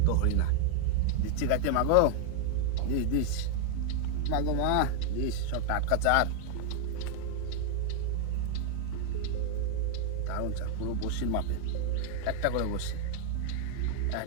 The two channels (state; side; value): different; both; correlation 0.00